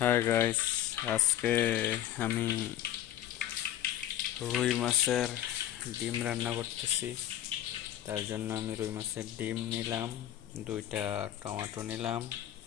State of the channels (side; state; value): right; quieter; 12.0 dB